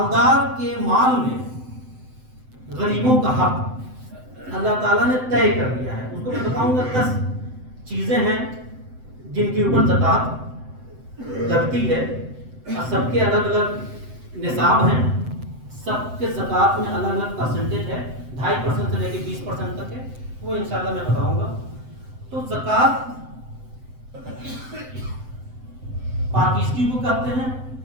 کے مال میں غریبوں کا حق اللہ تعالیٰ نے طے کر دیا ہے. اس کو میں بتاؤں گا 10 چیزیں ہیں جن کے اوپر زکوٰۃ لگتی ہے, اور سب کے الگ الگ نصاب ہیں. سب کے زکوٰۃ میں الگ الگ پرسنٹیج ہے, 2.5% سے لے کے 20% تک ہے. وہ انشاءاللہ میں بتاؤں گا. تو زکوٰۃ پاکیزگی کو کہتے ہیں.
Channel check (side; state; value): left; late; 7.8 ms